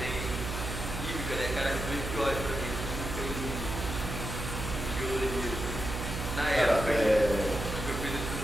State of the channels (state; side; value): noise; right; hum, 5 dB below the sound